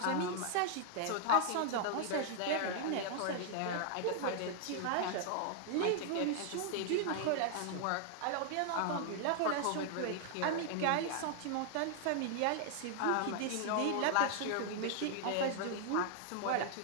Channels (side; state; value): both; different; correlation 0.00